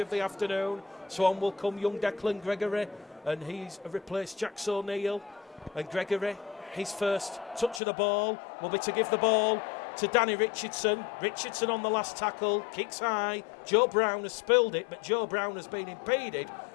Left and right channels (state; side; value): drops out; right; at 7.8 s